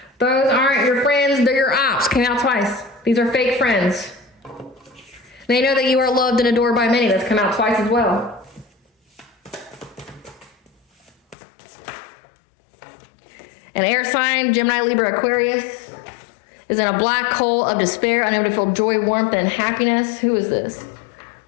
Those aren't your friends, they're your ops. Came out twice. These are fake friends. They know that you are loved and adored by many. That's come out twice as well. An air sign, Gemini, Libra, Aquarius, is in a black hole of despair, unable to feel joy, warmth, and happiness. Who is this?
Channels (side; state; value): right; drops out; at 11.4 s